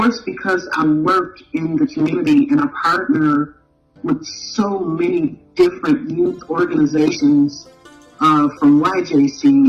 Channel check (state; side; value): identical; both; correlation 1.00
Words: because I work in the community and I partner with so many different youth organizations, from